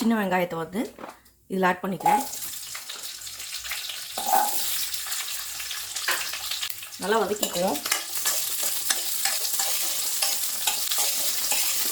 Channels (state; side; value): identical; both; correlation 1.00